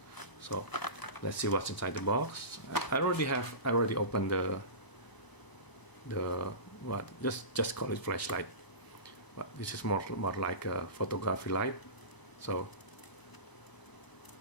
So let's see what's inside the box. I already opened just call it flashlight, but this is more like a photography light. So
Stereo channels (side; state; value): right; late; 1.0 ms